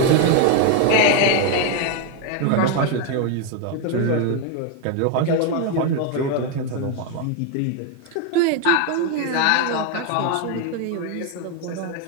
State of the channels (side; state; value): both; different; correlation 0.01